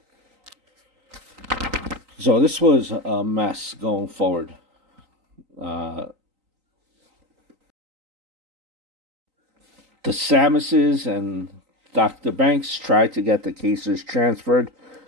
So this was a mess going forward. The Samuses and Dr. Banks tried to get the cases transferred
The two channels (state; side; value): late; left; 3.9 ms